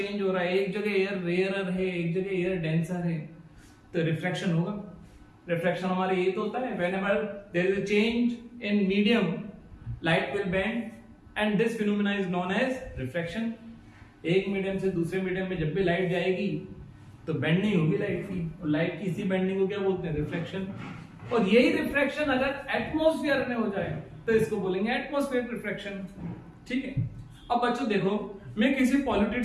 हो रहा है, एक जगह एयर रेयरर है, एक जगह एयर डेंसर है, तो रिफ्रैक्शन होगा। रिफ्रैक्शन हमारे ये तो होता है whenever there is a change in medium, light will bend and this phenomena is known as refraction। एक मीडियम से दूसरे मीडियम में जब भी लाइट जाएगी तो बेंडिंग होगी लाइट की, और लाइट की इसी बेंडिंग को क्या बोलते हैं? रिफ्रैक्शन। और यही रिफ्रैक्शन अगर एटमॉस्फेयर में हो जाए तो इसको बोलेंगे एटमॉस्फेयर रिफ्रैक्शन। ठीक है, अब बच्चों देखो, मैं किसी पॉल्यूटेड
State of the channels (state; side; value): identical; both; correlation 1.00